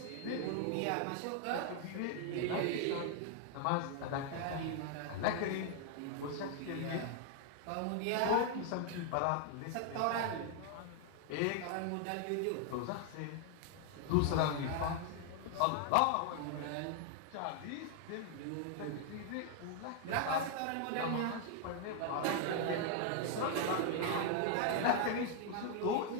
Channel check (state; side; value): different; both; correlation 0.00